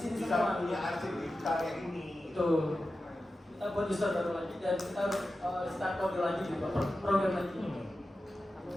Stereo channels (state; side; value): normal; both; correlation 0.93